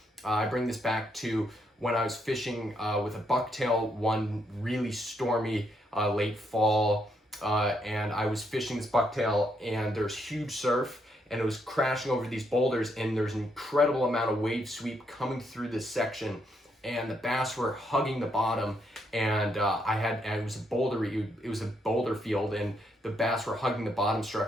I bring this back to when I was fishing with a bucktail one really stormy late fall, and I was fishing this bucktail, and there's huge surf, and it was crashing over these boulders, and there's an incredible amount of wave sweep coming through this section, and the bass were hugging the bottom, and it was a boulder field, and the bass were hugging the bottom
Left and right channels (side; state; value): both; normal; correlation 0.76